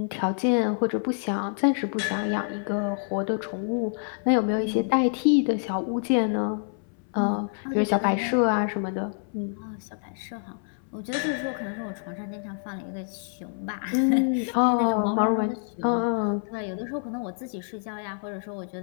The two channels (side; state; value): right; silent; 60 dB below the other